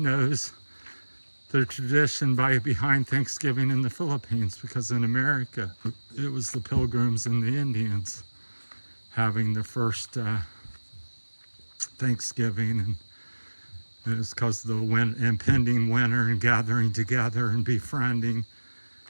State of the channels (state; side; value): inverted; both; correlation -1.00